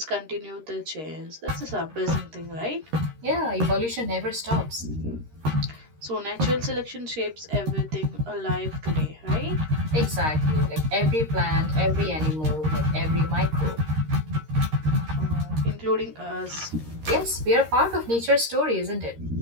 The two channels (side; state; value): left; late; 13 ms